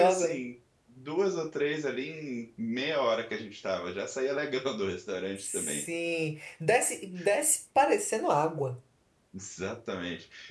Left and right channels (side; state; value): both; identical; correlation 1.00